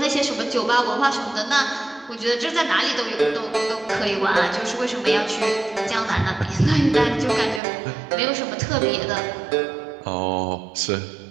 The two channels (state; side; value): drops out; left; at 7.6 s